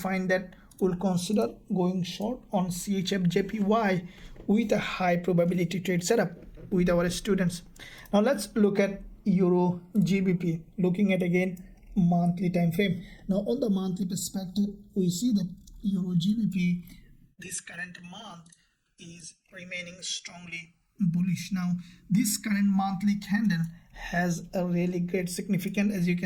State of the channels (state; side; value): identical; both; correlation 1.00